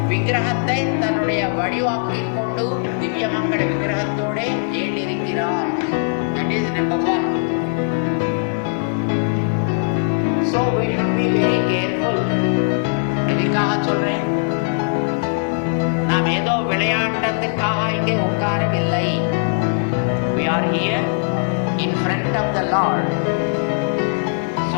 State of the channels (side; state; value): right; silent; 61 dB below the other